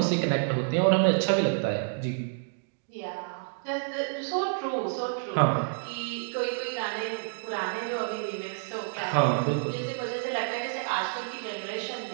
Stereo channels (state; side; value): silent; left; 59 dB below the other